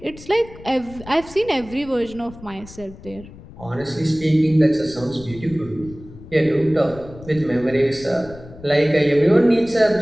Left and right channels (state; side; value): noise; left; rumble, 18 dB below the sound